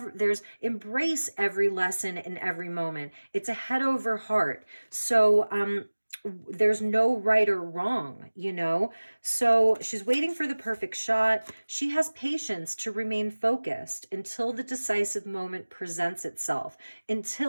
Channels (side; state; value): both; inverted; correlation -1.00